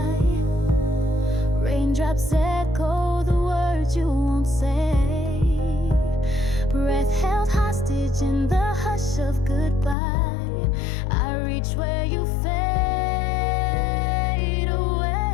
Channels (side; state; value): right; drops out; at 10.0 s